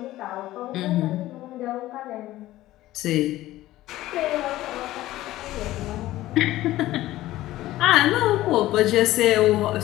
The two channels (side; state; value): right; quieter; 15.7 dB